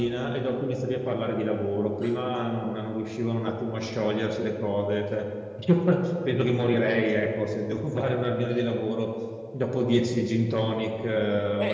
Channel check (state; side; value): identical; both; correlation 1.00